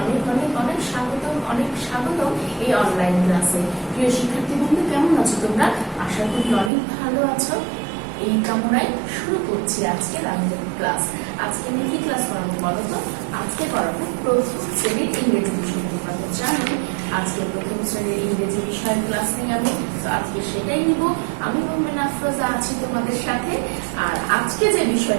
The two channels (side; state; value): left; drops out; at 6.7 s